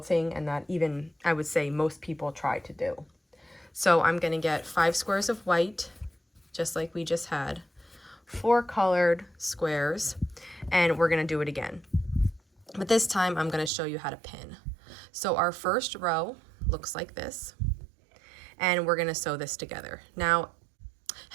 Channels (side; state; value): left; drops out; at 13.7 s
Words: and that even I would say most people try to do. So I'm gonna get 5 squares of white, just like we just had, 4 colored squares, and we're gonna do it again. But this time I'm going to show you how to pin. So our first row looks like this, and we're going to sew this together. Now,